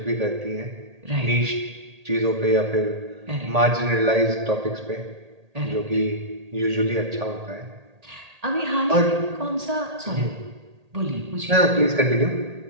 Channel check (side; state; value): left; late; 1.8 ms